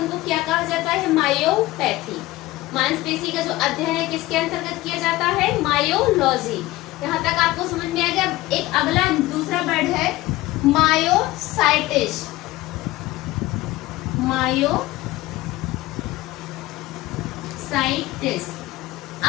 क्या कहा जाता है, मायोपैथी। मांसपेशी का जो अध्ययन है किसके अंतर्गत किया जाता है, मायोलॉजी। यहाँ तक आपको समझ में आ गया। एक अगला दूसरा वर्ड है मायोसाइटिस। मायोसाइटिस।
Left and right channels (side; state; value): right; quieter; 18.1 dB